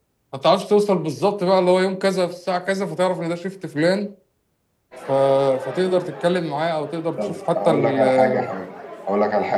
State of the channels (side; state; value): both; identical; correlation 1.00